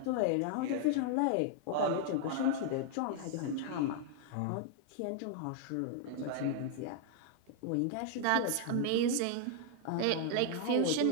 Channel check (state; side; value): different; both; correlation 0.00